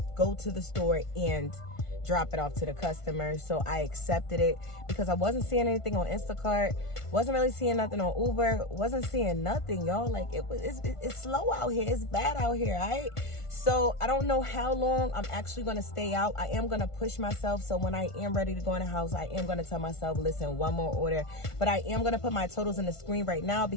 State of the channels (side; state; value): right; late; 1.5 ms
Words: go to the store and drop it off to the customer. So I accepted it because I wasn't seeing anything on Instacart, wasn't really seeing nothing on Uber, wasn't seeing nothing, y'all. Like it's slow out here, it's bad out here, all right? So I don't know how long I'm actually gonna stay out. I am gonna push myself, so when I am ready to go in the house, I am gonna tell myself, listen, one more order. But I am gonna put my totals in the screen right now